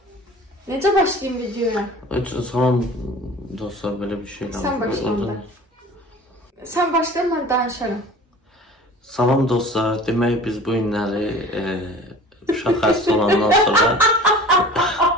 Necə başlayayım videoya? Salam dostlar, böyle bir şey Sen başla. Sen başla, ben danışarım. Salam dostlar, demek biz bu günləri uşaq xəstə olandan sonra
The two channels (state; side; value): normal; both; correlation 0.42